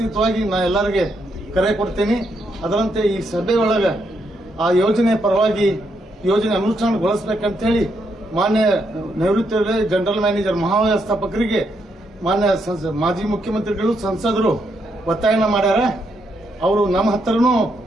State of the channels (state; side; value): normal; both; correlation 0.78